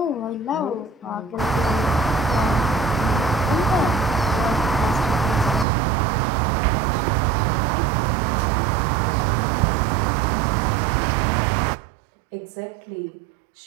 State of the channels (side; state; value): left; drops out; at 5.7 s